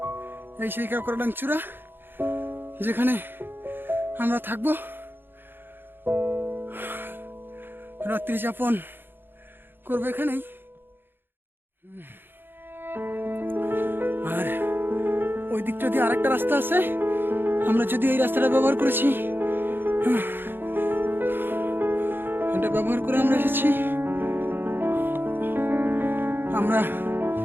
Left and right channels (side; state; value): left; late; 0.10 ms